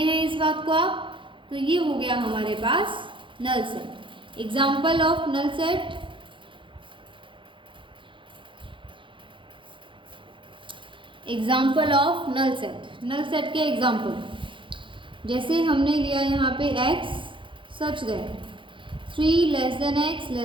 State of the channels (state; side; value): late; left; 0.24 ms